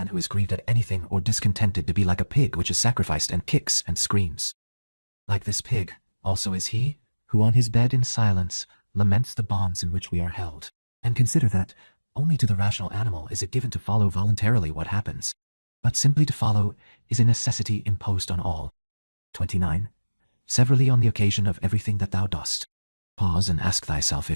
who is grieved at anything or discontented to be like a pig which is sacrificed and kicks and screams. Like this pig also is he who on his bed in silence laments the bonds in which we are held. And consider that only to the rational animal is it given to follow voluntarily what happens, but simply to follow is a necessity imposed on all. 29. Severally on the occasion of everything that thou dost, pause and ask thyself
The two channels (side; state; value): both; inverted; correlation -1.00